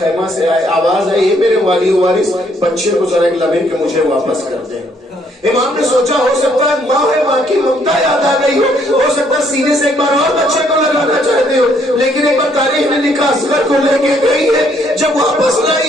خیمہ سے آواز آئی میرے والی وارث بچے کو ذرا ایک لمحے کے مجھے واپس کر دیں۔ امام نے سوچا ہو سکتا ہے ماں ہے، ماں کی ممتا یاد آ گئی ہو سکتا ہے سینے سے ایک بار اور بچے کو لگانا چاہتے ہو، لیکن ایک بار تاریخ نے لکھا اصغر کو لے کے گئی ہے، جب واپس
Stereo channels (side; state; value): both; normal; correlation 0.68